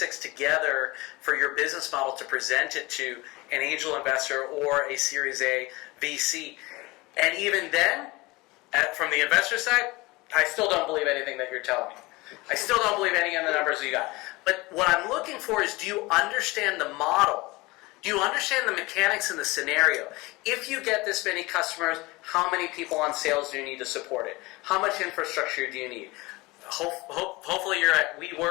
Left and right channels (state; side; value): quieter; right; 22.5 dB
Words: together for your business model to present it to an angel investor or a Series A VC. And even then, from the investor side, I still don't believe anything that you're telling me. I still don't believe any of the numbers you got. But what I'm looking for is, do you understand the model? Do you understand the mechanics in the scenario? If you get this many customers, how many people on sales do you need to support it? How much infrastructure do you need? Hopefully you're at